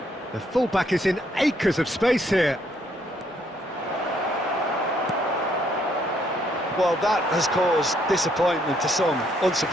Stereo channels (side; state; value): both; normal; correlation 0.70